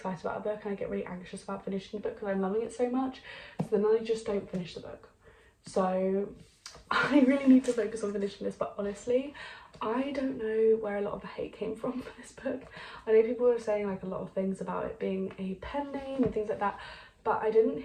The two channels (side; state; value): both; identical; correlation 1.00